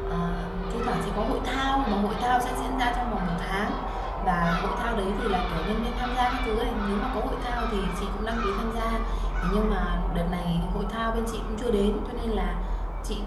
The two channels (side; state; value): both; identical; correlation 1.00